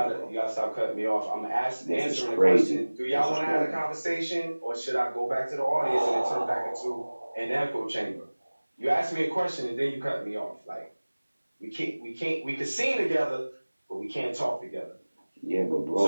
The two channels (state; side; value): inverted; both; correlation -1.00